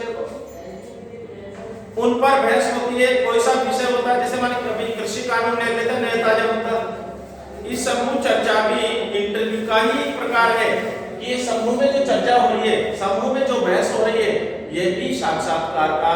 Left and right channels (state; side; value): identical; both; correlation 1.00